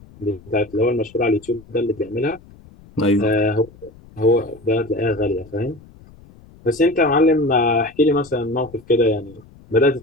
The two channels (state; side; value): noise; left; rumble, 24 dB below the sound